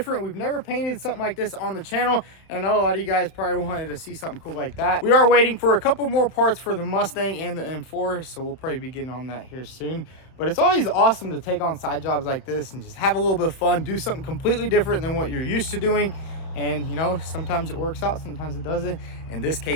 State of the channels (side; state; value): right; late; 31 ms